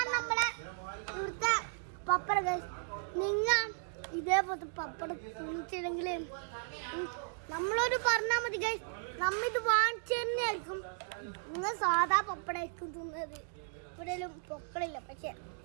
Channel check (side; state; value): left; silent; digital silence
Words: നമ്മളെ ഇവിടുത്തെ പപ്പട ഗൈസ്. നിങ്ങൾ ഇതേപോലത്തെ പപ്പടം തിന്നിട്ടില്ലെങ്കിൽ നമ്മളോട് പറഞ്ഞാൽ മതി ഗൈസ്, നമ്മിത് വാങ്ങിച്ചു തന്നെയായിരിക്കും. നിങ്ങൾ സാധാ പപ്പടായിരിക്കും തിന്നത്. ഇവിടെയും പൊക്കളില്ല, പക്ഷെ